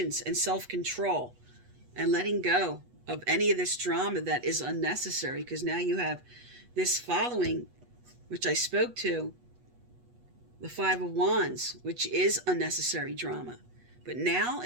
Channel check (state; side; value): late; left; 8.2 ms